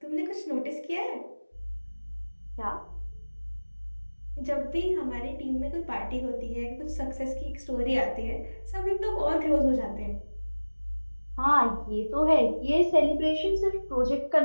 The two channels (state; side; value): inverted; both; correlation -1.00